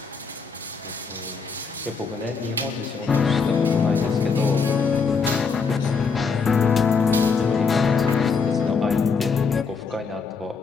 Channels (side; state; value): right; quieter; 5.1 dB